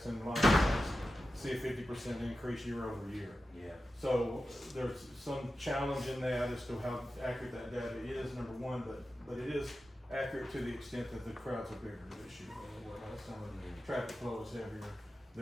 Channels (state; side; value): normal; both; correlation 0.92